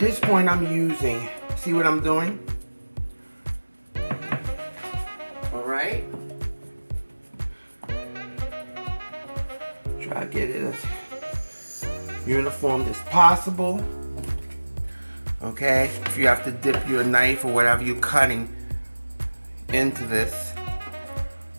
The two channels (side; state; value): both; inverted; correlation -1.00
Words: point I'm using, see what I'm doing? All right. Try to get it as uniform as possible. Okay, if you have to dip your knife or whatever you're cutting into this,